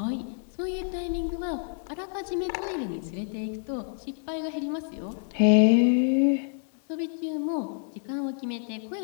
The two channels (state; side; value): silent; right; 58 dB below the other